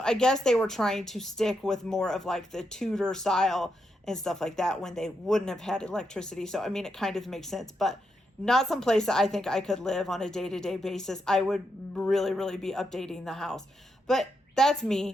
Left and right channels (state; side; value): normal; both; correlation 0.82